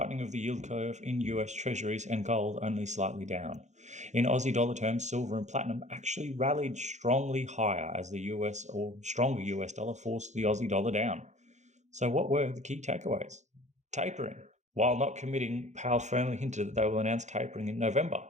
of the yield curve in US Treasuries and gold only slightly down. In Aussie dollar terms, silver and platinum actually rallied strongly higher as the US or stronger US dollar forced the Aussie dollar down. So what were the key takeaways? Tapering. While not committing, Powell firmly hinted that they will announce tapering in November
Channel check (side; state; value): left; late; 0.34 ms